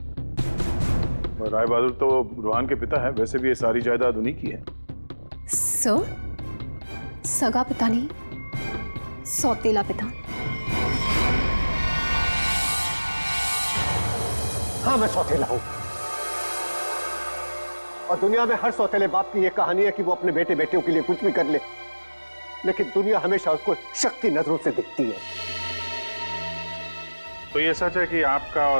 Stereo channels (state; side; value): inverted; both; correlation -1.00